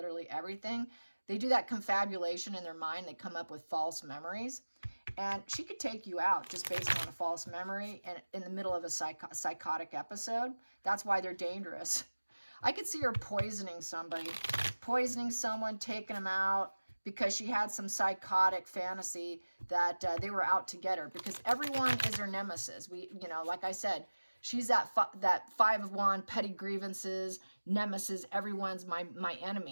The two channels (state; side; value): inverted; both; correlation -1.00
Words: everything. They do that confabulation in their mind. They come up with false memories. And she could take you out just based on a false memory and in the middle of a psychotic episode. That's why they're dangerous. I could see her poisoning somebody, poisoning someone, taking them out because she had some psychotic fantasy that they were out to get her, because everyone is her nemesis. You know, like I said, she's that five of wands, petty grievances, nemesis. Everyone's my